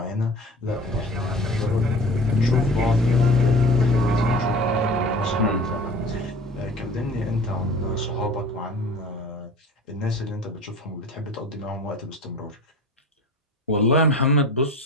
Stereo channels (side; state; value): both; normal; correlation 0.40